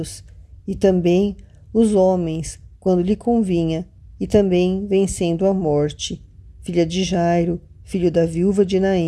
e também os homens, quando lhe convinha, e também vencendo a morte, filha de Jairo, filho da viúva de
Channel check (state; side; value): identical; both; correlation 1.00